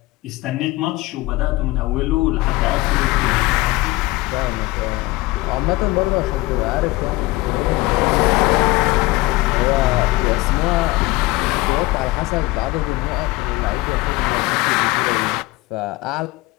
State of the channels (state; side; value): quieter; right; 20.4 dB